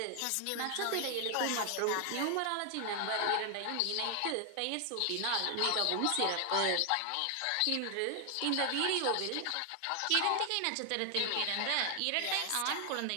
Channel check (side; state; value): both; different; correlation 0.00